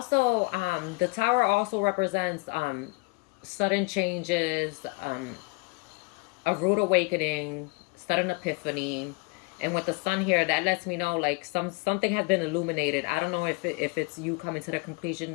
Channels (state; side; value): quieter; right; 30.6 dB